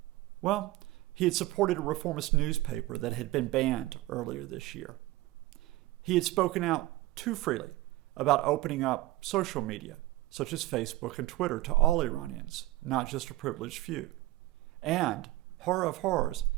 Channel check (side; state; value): left; quieter; 17.7 dB